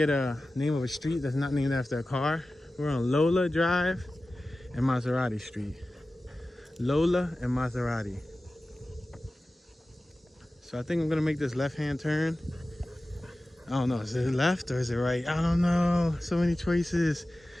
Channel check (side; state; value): both; normal; correlation 0.95